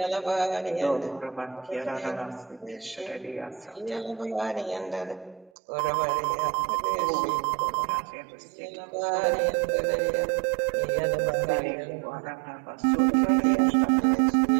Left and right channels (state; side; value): drops out; left; at 5.5 s